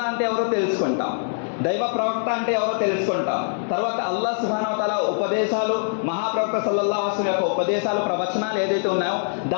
అంటే ఎవరో తెలుసుకుంటాం, దైవ ప్రవక్త అంటే ఎవరో తెలుసుకుంటాం. తర్వాత అల్లాహ్ సుబ్హానహు వ తఆలా ఉపదేశాలు, మహాప్రవక్త సల్లల్లాహు అలైహి వసల్లం యొక్క ఉపదేశాలు, ప్రవచనాలు ఏదైతే ఉన్నాయో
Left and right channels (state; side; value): silent; right; digital silence